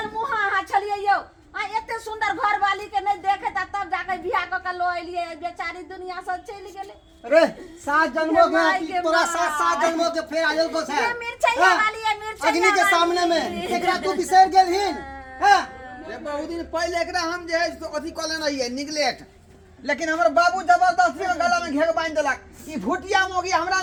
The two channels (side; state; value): both; identical; correlation 1.00